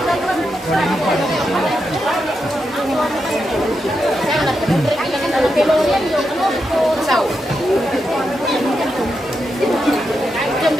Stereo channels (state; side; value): normal; both; correlation 0.85